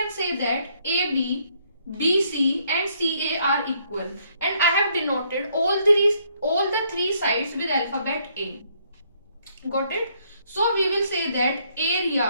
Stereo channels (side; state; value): both; inverted; correlation -0.69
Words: say that AB, BC and CA are equal, and I have denoted all the three sides with alphabet A. Got it? So we will say that